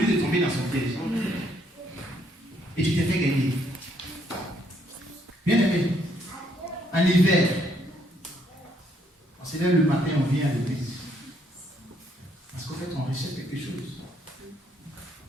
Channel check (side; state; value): both; normal; correlation 0.70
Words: de tomber dans son piège. Et tu t'es fait gagner. Bien aimé, en hiver, on se lève le matin, on vient à l'église. Parce qu'en fait, on rejette quelque chose.